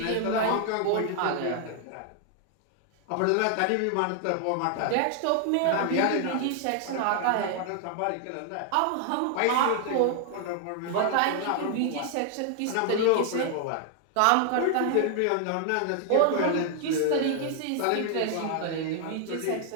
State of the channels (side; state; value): both; different; correlation 0.00